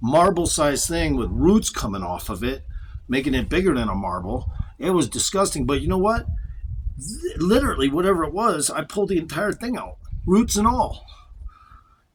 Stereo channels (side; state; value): both; identical; correlation 1.00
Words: marble-sized thing with roots coming off of it, making it bigger than a marble. It was disgusting, but you know what? Literally, whatever it was, I pulled the entire thing out, roots and all.